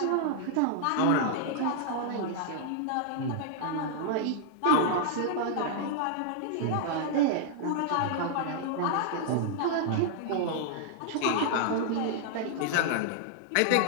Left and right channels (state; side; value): different; both; correlation -0.01